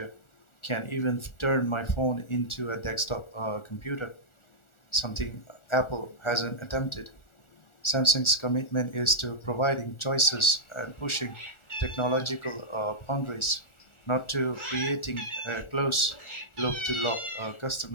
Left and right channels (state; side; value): late; right; 1.4 ms